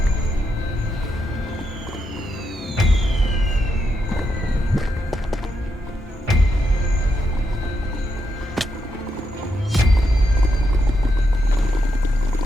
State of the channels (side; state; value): both; normal; correlation 0.82